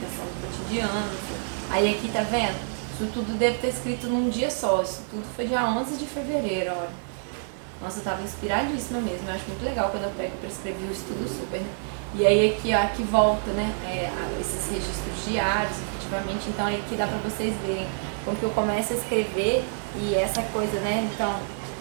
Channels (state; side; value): silent; left; 60 dB below the other